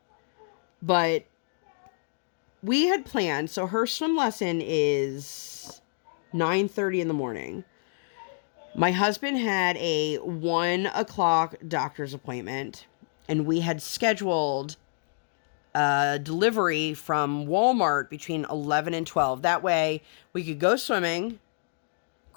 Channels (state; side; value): silent; right; digital silence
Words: But we had planned. So her swim lesson is 9:30 in the morning. My husband had a 1 o'clock doctor's appointment. And we had scheduled a delivery from Walmart between 11 and 12. That way, we could go swimming,